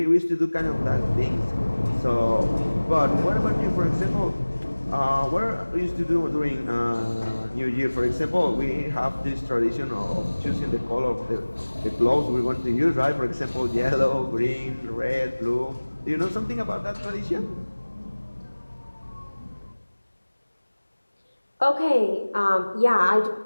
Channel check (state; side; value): inverted; both; correlation -1.00